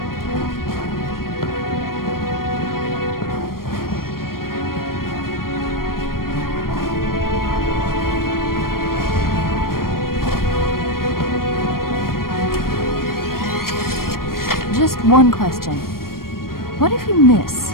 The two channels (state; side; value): late; right; 0.92 ms